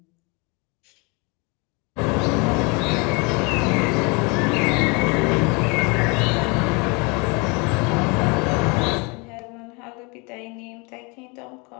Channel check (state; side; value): quieter; right; 29.8 dB